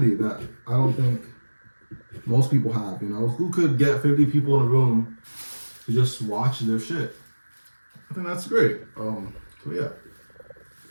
that I don't think most people have. You know, who could get 50 people in a room to just watch their shit? I think that's great. So yeah.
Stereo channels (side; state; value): both; inverted; correlation -1.00